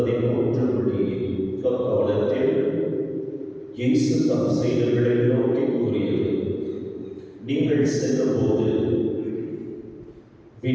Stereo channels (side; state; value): both; identical; correlation 1.00